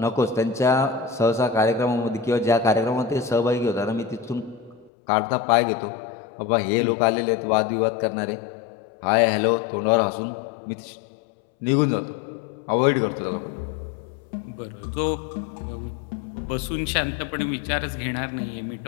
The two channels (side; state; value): right; drops out; at 4.9 s